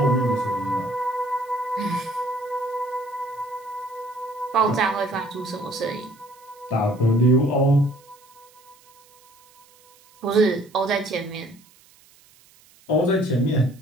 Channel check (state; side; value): noise; right; hiss, 28 dB below the sound